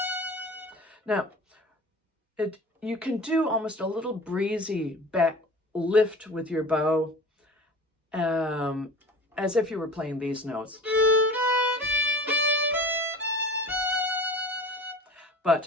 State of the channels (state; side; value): normal; both; correlation 0.39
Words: now, you can do almost a little breezy back lift with your bow, as if you were playing these notes.